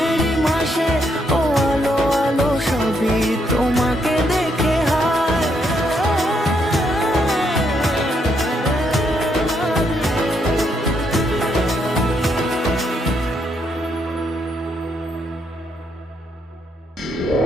মাসে, ও আলো আলো সবই তোমাকে দেখে হায়।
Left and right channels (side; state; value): both; normal; correlation 0.76